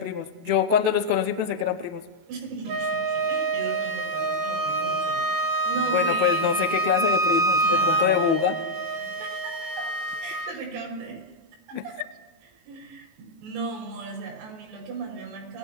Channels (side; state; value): left; late; 19 ms